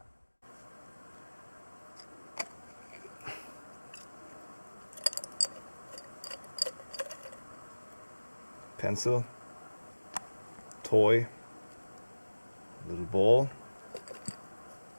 Pencil, toy, little ball.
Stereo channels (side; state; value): both; inverted; correlation -1.00